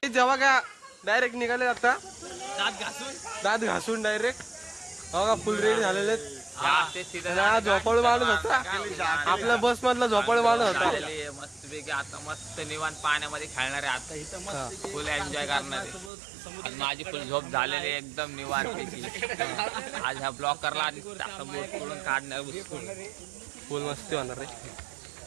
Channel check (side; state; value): left; drops out; at 16.1 s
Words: जेव्हा का डायरेक्ट निघाले आता दात घासून डायरेक्ट. बघा फुल रेडी झालेले. झोपाळू माणूस होता आपल्या बस मधला, झोपाळू माणूस होता. मस्तपैकी आता मस्त निवांत पाण्यामध्ये खेळणार आहे. आता इथं मस्त फुल एन्जॉय करणार आहे. माझी फुल झोप झालेली एकदम निवांतपैकी. आज हा ब्लॉग करला आणि बोट करून काढणार फुल मस्ती होणार रे